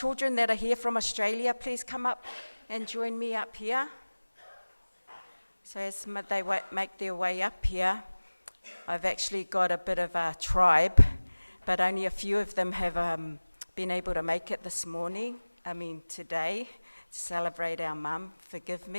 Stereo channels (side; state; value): both; inverted; correlation -1.00